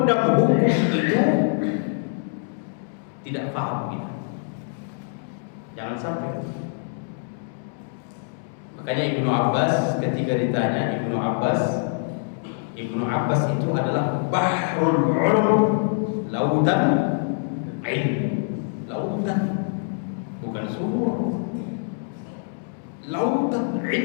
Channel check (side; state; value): right; silent; digital silence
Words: hukum itu, tidak paham kita. Jangan sampai. Makanya Ibnu Abbas ketika ditanya, Ibnu Abbas itu adalah bahrul ulum, lautan ilmu, lautan, bukan sumur. Lautan